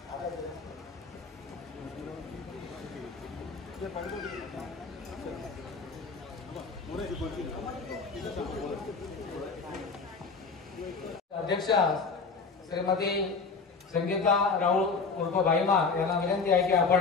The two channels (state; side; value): quieter; right; 4.6 dB